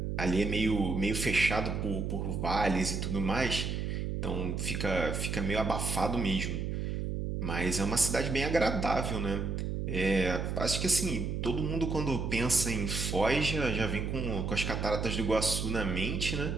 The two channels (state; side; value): noise; right; hum, 2 dB below the sound